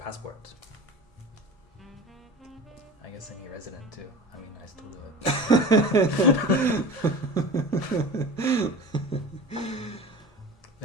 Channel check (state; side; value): normal; both; correlation 0.35